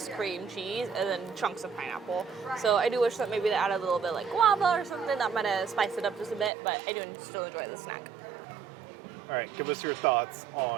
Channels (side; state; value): left; drops out; at 6.5 s